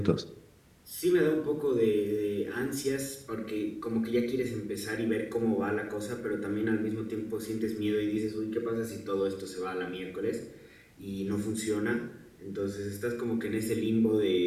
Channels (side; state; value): both; identical; correlation 1.00